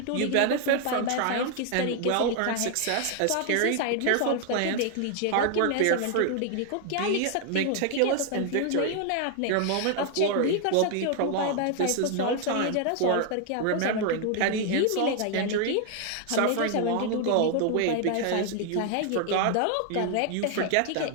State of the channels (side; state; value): both; different; correlation 0.00